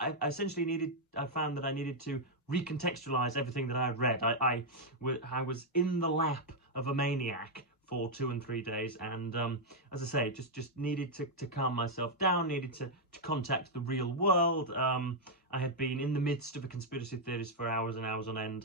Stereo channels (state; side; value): normal; both; correlation -0.02